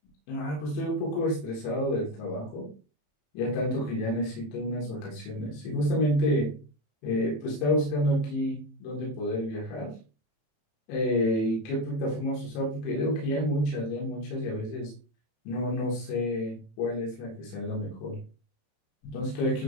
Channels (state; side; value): late; right; 27 ms